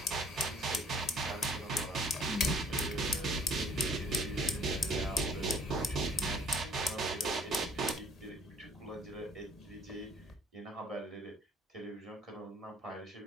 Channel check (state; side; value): normal; both; correlation 0.57